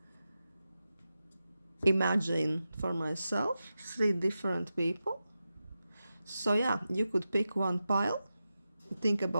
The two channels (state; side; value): inverted; both; correlation -0.91